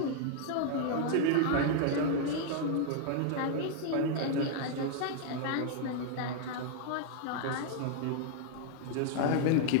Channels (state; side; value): different; both; correlation -0.01